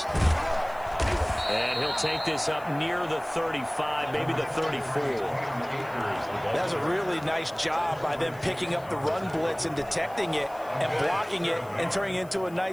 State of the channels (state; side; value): noise; left; hiss, 25 dB below the sound